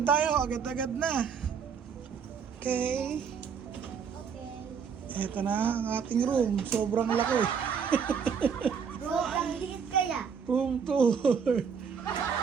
tayo. Agad-agad na. Okay. Ito na ang ating room. Sobrang laki. Bro, ang liit kaya. Room tour.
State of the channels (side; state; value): left; quieter; 6.6 dB